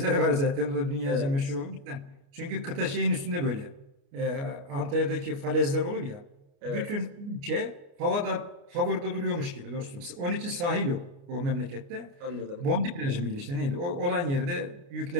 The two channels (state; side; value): late; left; 29 ms